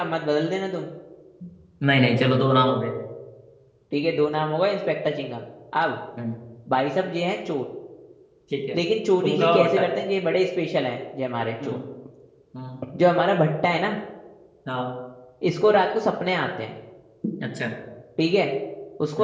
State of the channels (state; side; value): identical; both; correlation 1.00